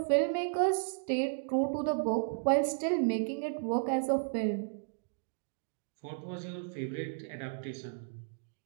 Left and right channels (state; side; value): silent; left; digital silence